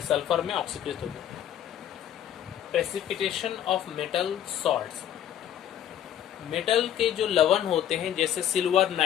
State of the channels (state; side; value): quieter; right; 10.5 dB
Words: सल्फर में ऑक्सीकृत हो गया। Precipitation of metal salts, metal के जो लवण होते हैं जैसे सिल्वर